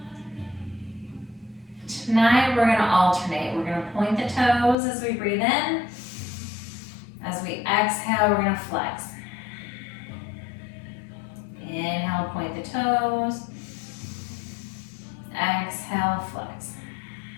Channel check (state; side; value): drops out; right; at 4.8 s